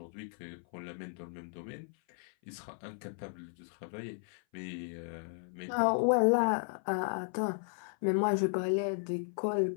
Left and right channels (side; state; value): right; silent; 55 dB below the other